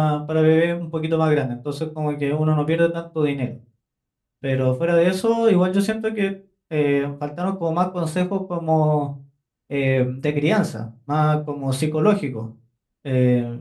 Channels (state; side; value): identical; both; correlation 1.00